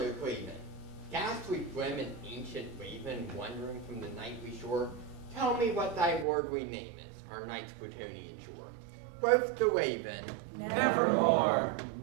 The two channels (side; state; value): left; drops out; at 6.2 s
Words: no craven. Ghastly grim and ancient raven, wandering from the nightly shore, tell me what thy lordly name is, our night's Plutonian shore. Quoth the raven, Nevermore.